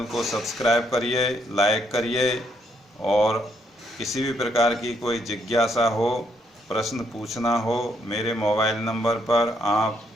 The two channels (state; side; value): normal; both; correlation 0.73